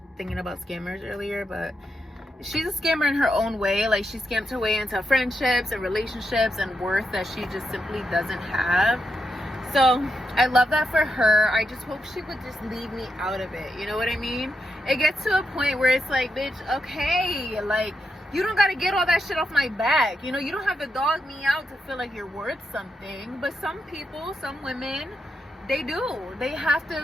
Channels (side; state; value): both; normal; correlation 0.84